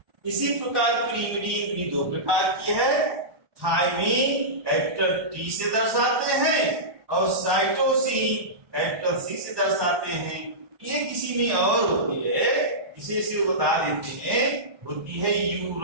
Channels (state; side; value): late; left; 1.1 ms